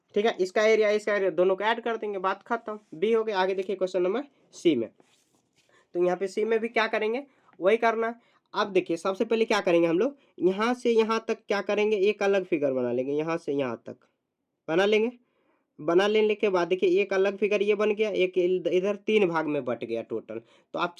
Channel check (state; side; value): identical; both; correlation 1.00